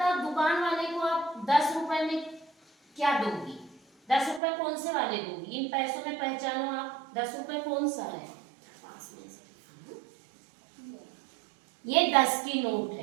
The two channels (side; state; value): left; drops out; at 4.4 s